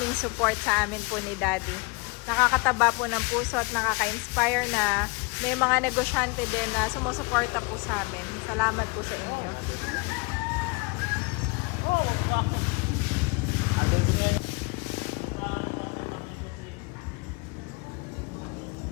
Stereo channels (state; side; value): quieter; right; 28.3 dB